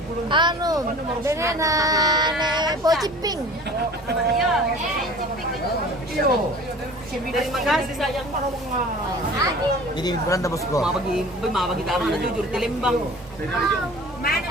Anu, dengan ne pociping. Iya, ciping. Terima kasih sayang. Ini Belanda bosku. Mabagi tama na jujur tilimbang. Mana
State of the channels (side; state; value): both; normal; correlation 0.44